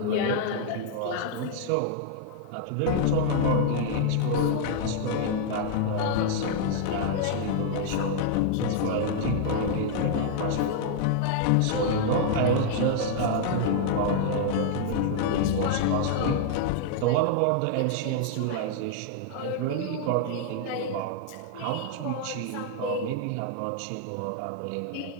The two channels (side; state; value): both; different; correlation -0.01